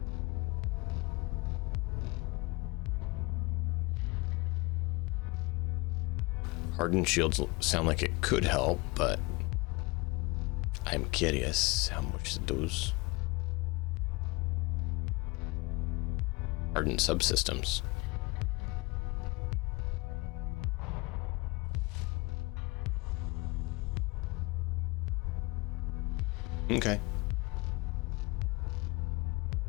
Hardened shields sound like it could help, but I'm curious how much those hardened subsystems. Okay.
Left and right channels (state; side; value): quieter; right; 24.8 dB